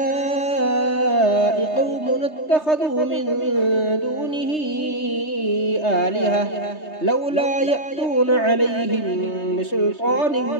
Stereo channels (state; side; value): late; right; 3.3 ms